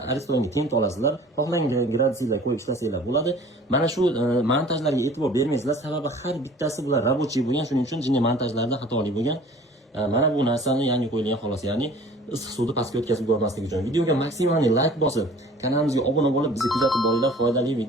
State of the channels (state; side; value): normal; both; correlation 0.48